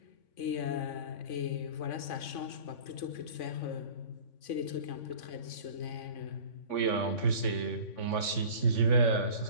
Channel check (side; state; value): right; late; 3.5 ms